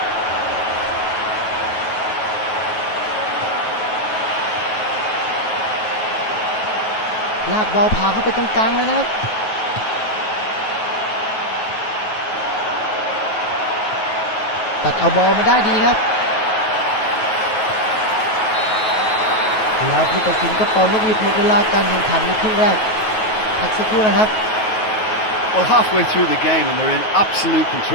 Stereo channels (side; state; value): right; late; 9.3 ms